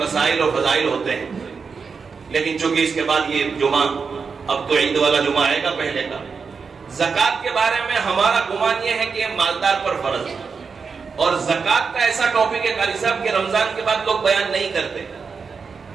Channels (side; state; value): left; quieter; 5.4 dB